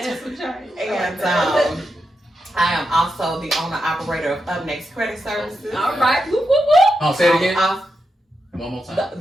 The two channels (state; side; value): normal; both; correlation 0.86